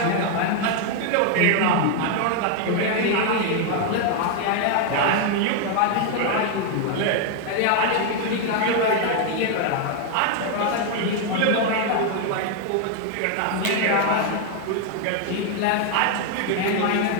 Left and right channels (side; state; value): both; different; correlation 0.00